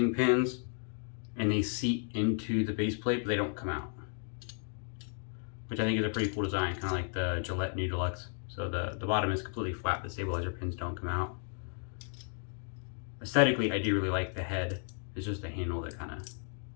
pins, and they seat into the base plate, but they don't come out, which I think is a pretty cool design, kind of like the Gillette New Deluxe. So the bottom is completely flat, the stabilizer pins don't come out. Aesthetically, I do really like the head. It's just the handle that kind of...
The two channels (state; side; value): silent; right; 55 dB below the other